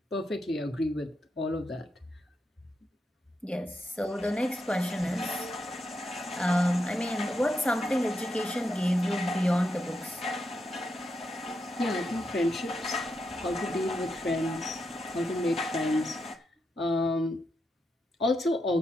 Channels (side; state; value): both; normal; correlation 0.84